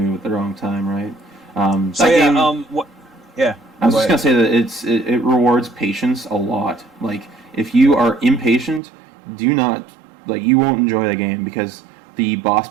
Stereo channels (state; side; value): drops out; left; at 8.8 s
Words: at the wrong time, right? I was just gonna say that it rewards patience a lot. Like if you are impatient, you won't enjoy the game, because the boss